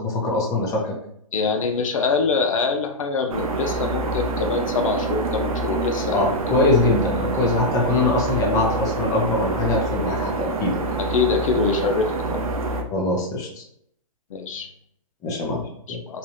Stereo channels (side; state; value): both; normal; correlation -0.01